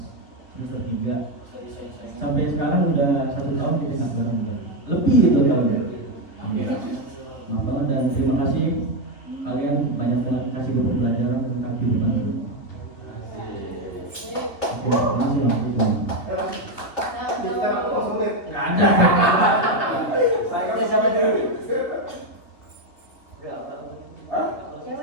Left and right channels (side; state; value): right; late; 3.1 ms